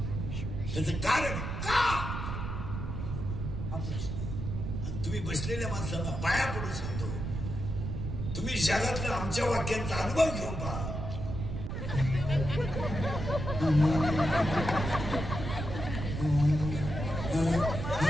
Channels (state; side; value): noise; right; rumble, 4 dB below the sound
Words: त्याचं कारण का? आणि तुम्ही बसलेल्या माणसांना पाया पडून सांगतो, तुम्ही जगातल्या आमच्या वाक्यांचा अनुभव घेऊन पहा.